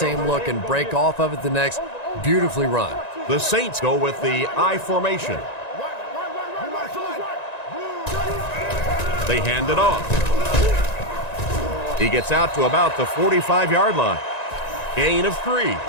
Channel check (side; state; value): right; late; 1.9 ms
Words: look, and break off of it the next. Beautifully run. The Saints go with the I formation. They hand it off. He gets out to about the 45-yard line. Gain of 3.